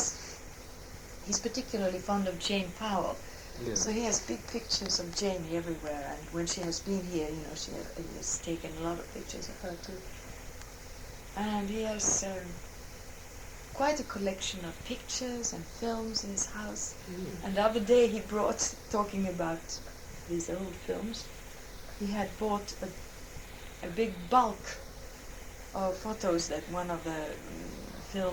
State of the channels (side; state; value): both; identical; correlation 1.00